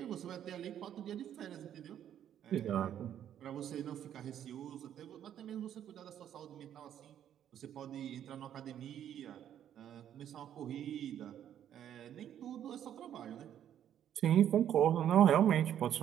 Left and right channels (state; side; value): quieter; left; 10.3 dB